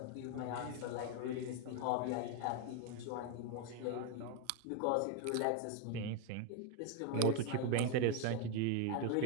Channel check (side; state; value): both; different; correlation 0.01